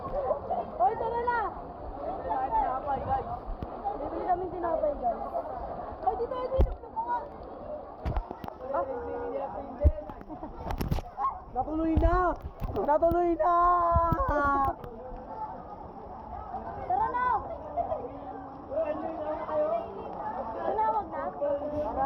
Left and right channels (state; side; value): identical; both; correlation 1.00